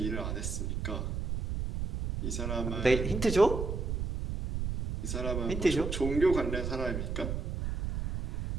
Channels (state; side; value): noise; right; rumble, 3 dB below the sound